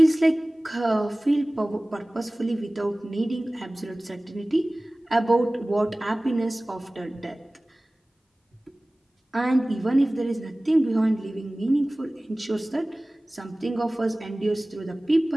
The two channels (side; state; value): both; normal; correlation 0.98